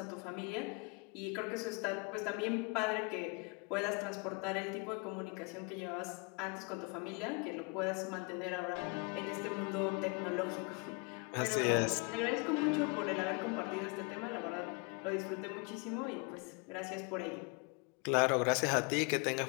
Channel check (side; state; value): right; quieter; 32.2 dB